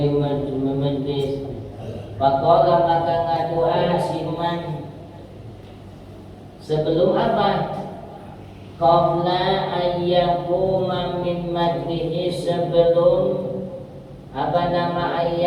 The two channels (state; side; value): identical; both; correlation 1.00